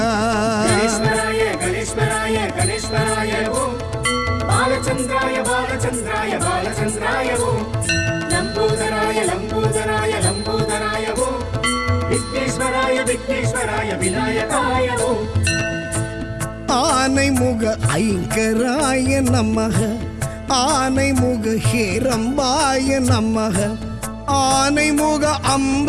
ಗಣೇಶ್ವರಾಯ ಗಣೇಶ್ವರಾಯ ಗಣೇಶ್ವರಾಯ ಓಂ ಬಾಲಚಂದ್ರಾಯ ಬಾಲಚಂದ್ರಾಯ ಬಾಲಚಂದ್ರಾಯ ಓಂ ಲಂಬೋದರಾಯ ಲಂಬೋದರಾಯ ಲಂಬೋದರಾಯ ಓಂ ವಿಘ್ನೇಶ್ವರಾಯ ವಿಘ್ನೇಶ್ವರಾಯ ವಿನಾಯಕಾಯ ಓಂ ஆனைமுக ஐங்கராய நமக ஆனைமுக ஹேரம்பாய நமக ஆனைமுக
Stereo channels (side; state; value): both; identical; correlation 1.00